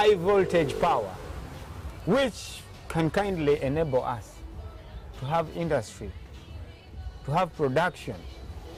voltage power. which can kindly enable us to have industry, to have production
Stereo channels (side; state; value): both; identical; correlation 1.00